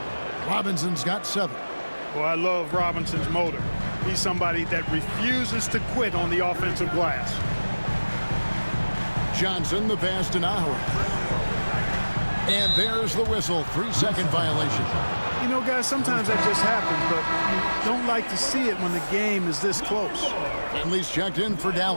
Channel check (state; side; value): inverted; both; correlation -1.00